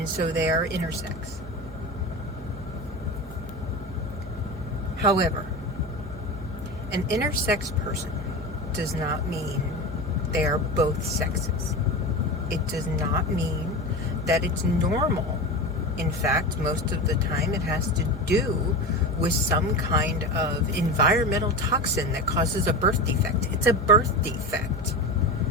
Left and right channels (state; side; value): normal; both; correlation 0.26